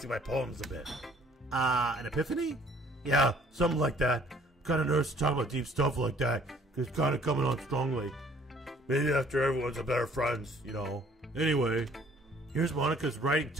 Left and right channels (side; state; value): both; normal; correlation 0.58